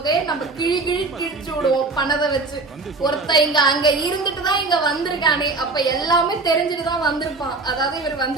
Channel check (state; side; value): quieter; left; 3.7 dB